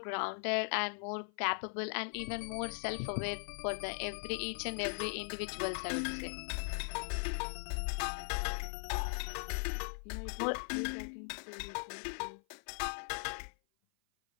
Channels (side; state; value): right; silent; 52 dB below the other